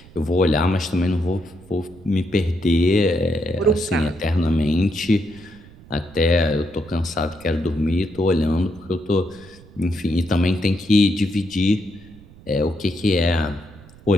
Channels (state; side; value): noise; right; rumble, 22 dB below the sound